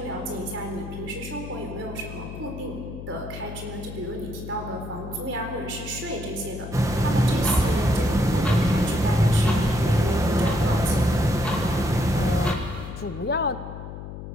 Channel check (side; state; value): left; noise; hum, 10 dB below the sound